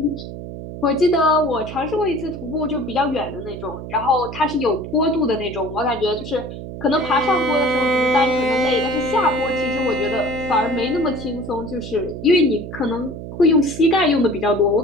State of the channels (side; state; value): right; noise; hum, 10 dB below the sound